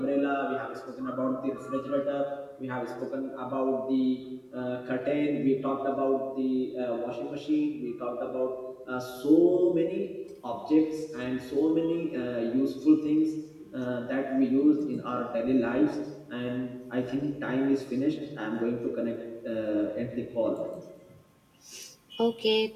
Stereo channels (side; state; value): both; identical; correlation 1.00